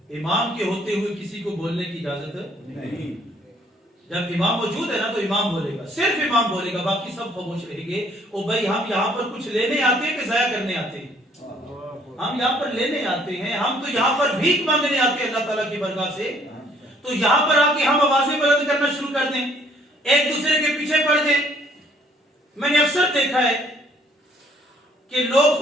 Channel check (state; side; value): normal; both; correlation 0.62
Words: امام کے ہوتے ہوئے کسی کو بولنے کی اجازت نہیں۔ جب امام موجود ہے نا تو امام بولے گا، صرف امام بولے گا، باقی سب خاموش رہیں گے۔ او بھائی ہم یہاں پر کچھ لینے آتے ہیں کہ ضائع کرنے آتے ہیں؟ ہم یہاں پر لینے آتے ہیں، ہم تو یہاں پر بھیک مانگنے آتے ہیں اللہ تعالیٰ کی برگاہ سے۔ تو یہاں پر آ کے ہم آوازیں بلند کرنا شروع کر دیں، ایک دوسرے کے پیچھے پڑ دیں۔ میں نے اکثر دیکھا ہے کہ لوگ